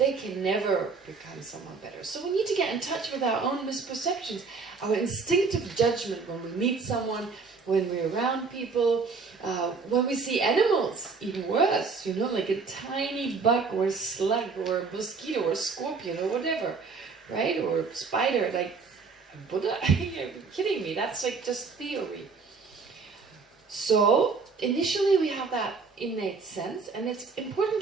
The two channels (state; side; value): quieter; left; 4.7 dB